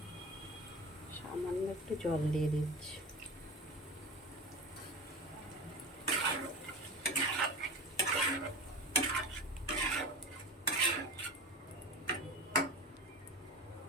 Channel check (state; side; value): normal; both; correlation 0.30